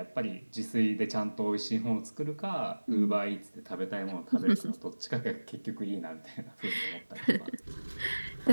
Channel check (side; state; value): both; inverted; correlation -1.00